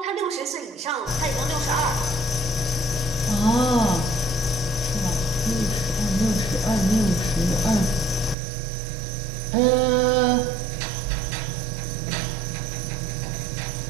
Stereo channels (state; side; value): drops out; left; at 8.3 s